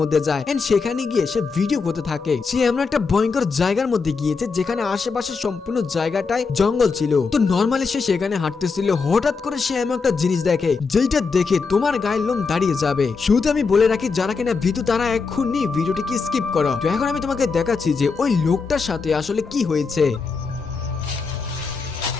যায় এন্ড সেখানে গিয়ে সে ভিডিও করতে থাকে। সে এমন একটা ভয়ঙ্কর জায়গার মধ্যে গিয়েছে যেখানে আশেপাশে সম্পূর্ণ জায়গাটাই জঙ্গল ছিল। তো নর্মালি সে সেখানে হাঁটতেছিল, হঠাৎ করে সে এমন একটা জিনিস দেখে যেটা দেখে তোমার গায়ের লোম দাঁড়িয়ে যাবে। শুধু আমি বলে রাখি, যারা কিনা ভীতু তারা এক্ষুনি ভিডিওটিকে স্কিপ করো। তো এখন আমি তোমাকে দেখাচ্ছি যে ওই লোকটার সাথে আসলে কি হয়েছে।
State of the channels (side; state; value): right; quieter; 4.8 dB